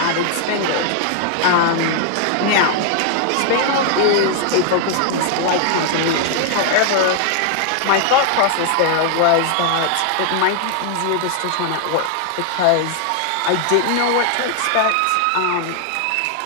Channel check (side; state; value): both; different; correlation 0.00